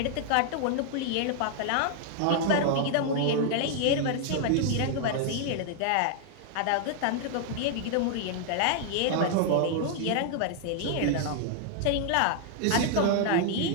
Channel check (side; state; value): both; different; correlation 0.00